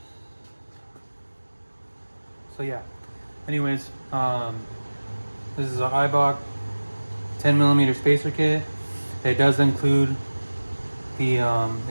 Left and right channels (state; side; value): inverted; both; correlation -1.00